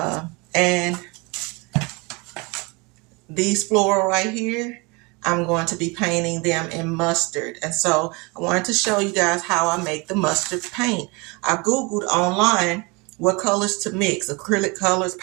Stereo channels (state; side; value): quieter; left; 27.5 dB